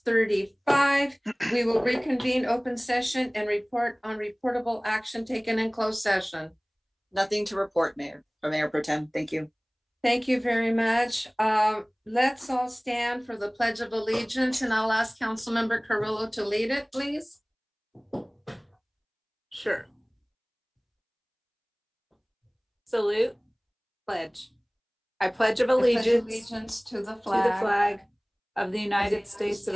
We will reconvene open session and report on reportable action taken in closed session. Nothing to report, Mayor or Mayor Pro Tem. Thank you. Thank you very much. Let's all stand for the Pledge of Allegiance, and I'll ask Councilmember Carrillo to lead it, please. Sure. Salute. Pledge. I pledge of I pledge allegiance allegiance to the to the flag of the of United States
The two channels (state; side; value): identical; both; correlation 1.00